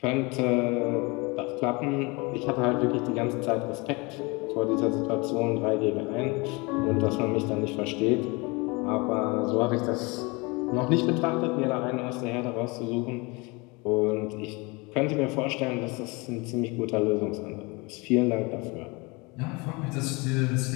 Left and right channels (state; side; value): quieter; right; 26.9 dB